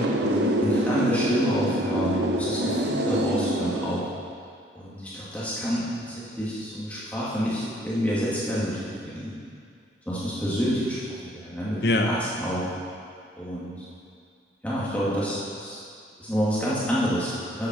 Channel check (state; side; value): normal; both; correlation 0.61